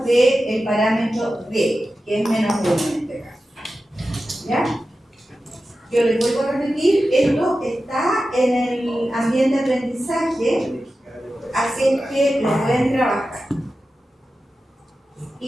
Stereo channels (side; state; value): both; normal; correlation 0.93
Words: del parámetro D, que es menos 1 en este caso. ¿Ya? Yo les vuelvo a repetir, esto está en el ambiente de aprendizaje, así es que lo pueden trabajar.